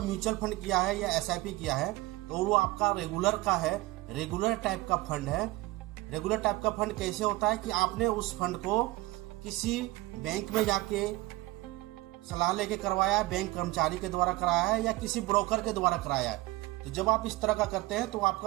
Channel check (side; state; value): left; quieter; 19.8 dB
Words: म्यूचुअल फंड किया है या एसआईपी किया है तो वो आपका रेगुलर का है, रेगुलर टाइप का फंड है। रेगुलर टाइप का फंड कैसे होता है कि आपने उस फंड को किसी बैंक में जाके सलाह लेके करवाया है, बैंक कर्मचारी के द्वारा कराया है या किसी ब्रोकर के द्वारा कराया है। तो जब आप इस तरह का करते हैं तो